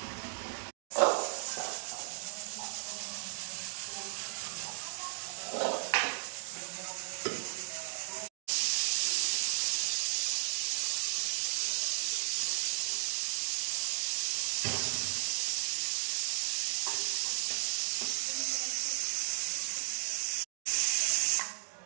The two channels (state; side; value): silent; left; digital silence